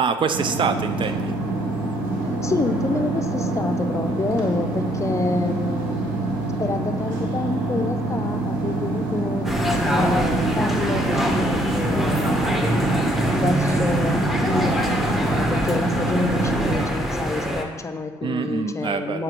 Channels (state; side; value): normal; both; correlation 0.67